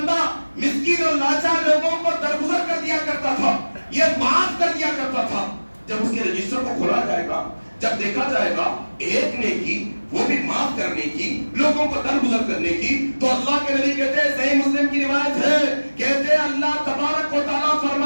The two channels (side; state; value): both; inverted; correlation -1.00